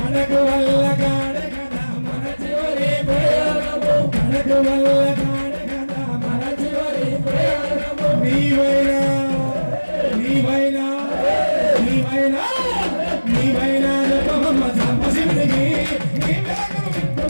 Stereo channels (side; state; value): both; inverted; correlation -1.00